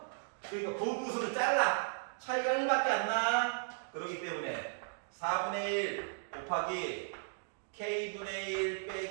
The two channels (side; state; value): left; silent; digital silence